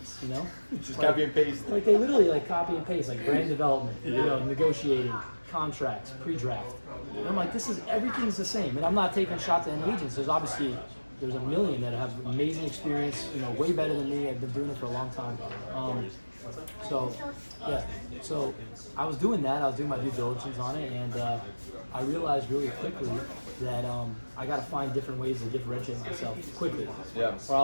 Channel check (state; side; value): inverted; both; correlation -1.00